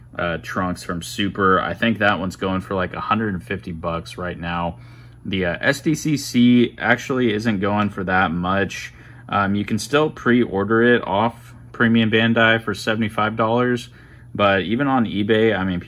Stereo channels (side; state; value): both; identical; correlation 1.00